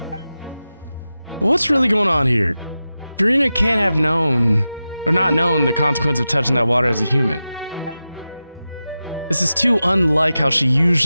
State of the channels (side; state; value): both; inverted; correlation -0.93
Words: What's really going on here? Furina can't have known, or not known, the consequence of touching that water as a human. This is too unlike how she